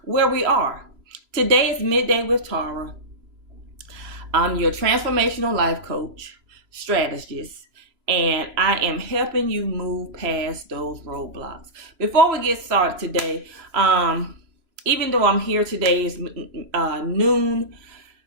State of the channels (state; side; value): late; left; 3.0 ms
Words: where we are. Today is Midday with Tara. I'm your transformational life coach, strategist, and I am helping you move past those roadblocks. Before we get started today, even though I'm here today is noon,